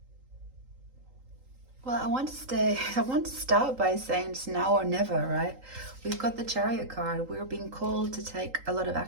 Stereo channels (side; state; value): left; late; 3.8 ms